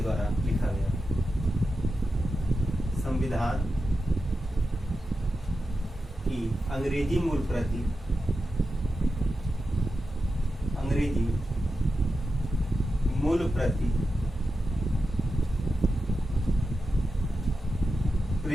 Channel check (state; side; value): normal; both; correlation 0.90